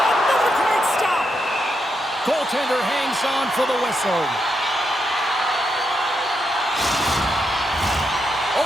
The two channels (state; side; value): normal; both; correlation 0.82